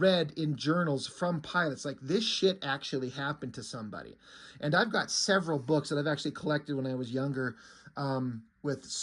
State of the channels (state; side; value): identical; both; correlation 1.00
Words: in journals from pilots. Like, this shit actually happened to somebody. And I've got several books that I've actually collected when I was younger, with